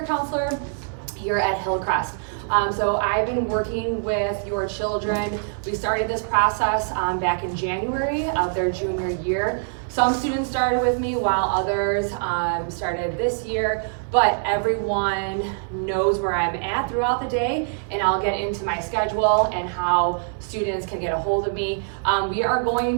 Counselor here at Hillcrest. So I've been working with your children. We started this process back in January of their junior year. Some students started with me while others started this year, but everyone knows where I'm at throughout the day, and I'll get into my schedule and how students can get a hold of me. We are going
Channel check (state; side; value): silent; left; 61 dB below the other